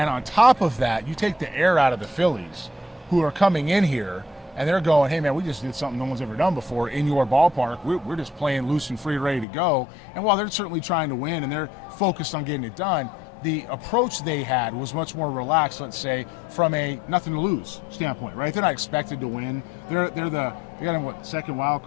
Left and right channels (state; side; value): drops out; right; at 9.5 s